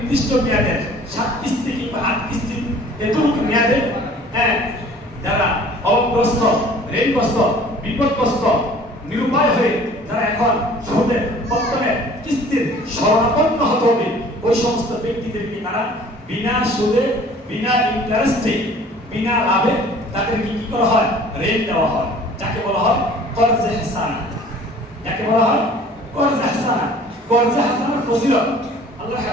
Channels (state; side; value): normal; both; correlation 0.50